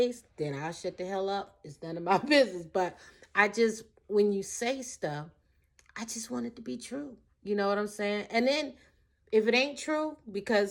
then I'll shut the hell up. It's none of my business. But when you say stuff, I just want it to be true. You know what I'm saying? And then if it ain't true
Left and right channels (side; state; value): both; identical; correlation 1.00